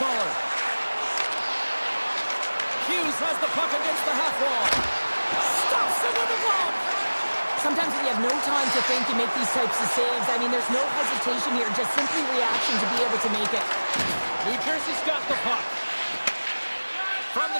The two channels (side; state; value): both; inverted; correlation -1.00